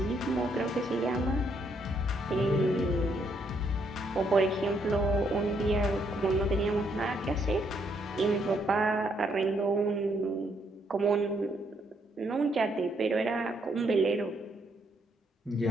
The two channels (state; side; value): normal; both; correlation 0.72